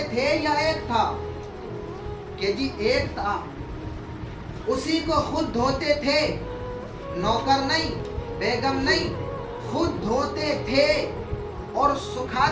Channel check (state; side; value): identical; both; correlation 1.00